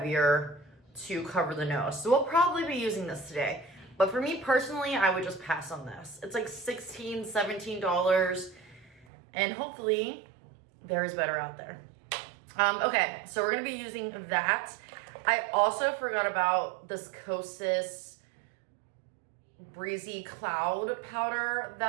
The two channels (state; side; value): drops out; left; at 9.1 s